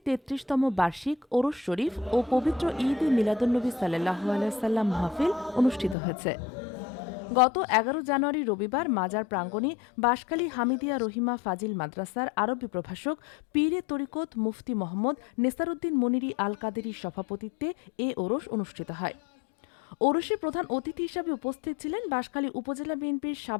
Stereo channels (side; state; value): right; drops out; at 6.0 s